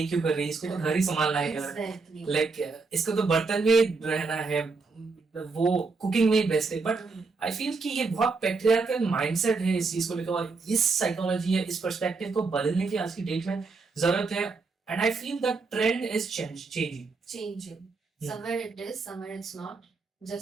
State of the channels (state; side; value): quieter; left; 4.2 dB